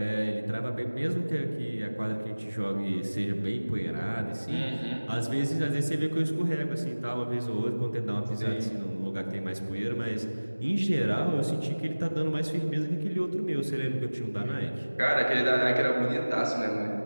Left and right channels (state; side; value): inverted; both; correlation -1.00